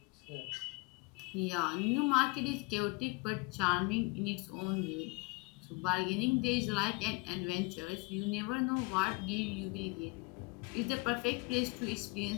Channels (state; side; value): quieter; right; 27.7 dB